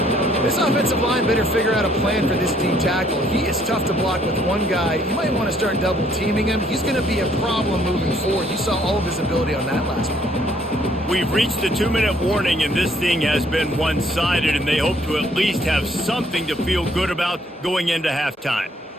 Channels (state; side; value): normal; both; correlation 0.65